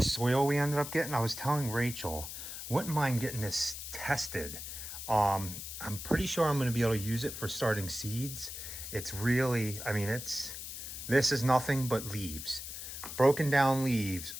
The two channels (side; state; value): left; noise; hiss, 8 dB below the sound